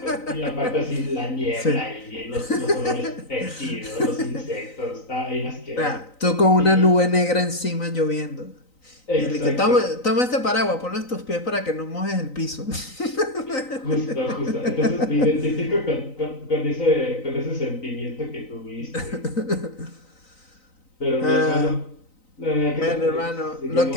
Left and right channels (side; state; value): right; late; 3.9 ms